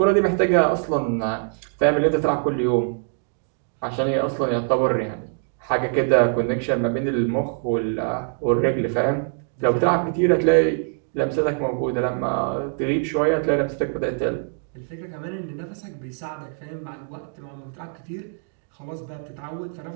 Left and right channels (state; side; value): silent; left; 63 dB below the other